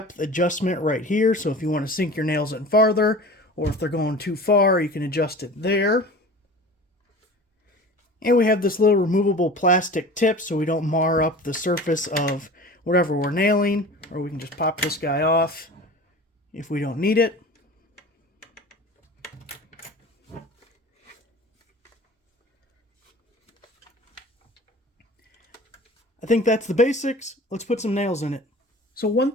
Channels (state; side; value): normal; both; correlation 0.39